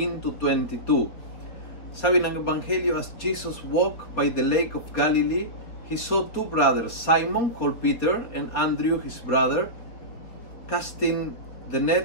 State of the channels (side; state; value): right; late; 4.2 ms